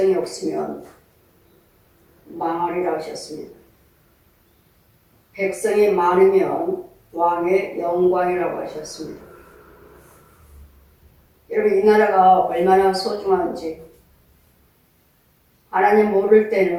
망하리라 하셨습니다. 백성이 많으면 왕의 영광이라고 하셨습니다. 여러분, 이 나라가 얼마나 소중한지 하나님 모를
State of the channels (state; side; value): identical; both; correlation 1.00